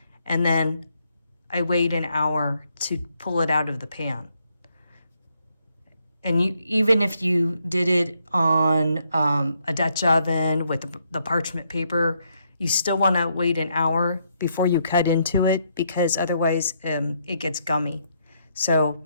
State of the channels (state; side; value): inverted; both; correlation -0.75